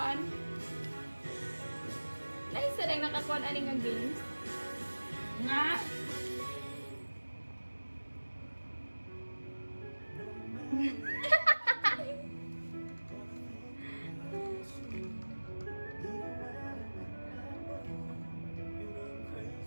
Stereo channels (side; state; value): both; inverted; correlation -1.00